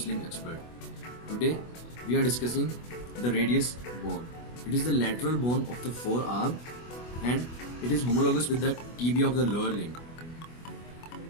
Expert. Today we are discussing the radius bone. It is the lateral bone of the forearm and it is homologous with the tibia of the lower limb.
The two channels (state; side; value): late; right; 24 ms